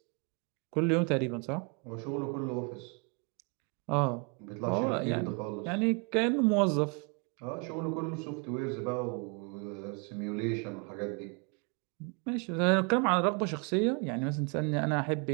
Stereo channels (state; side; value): quieter; left; 35.3 dB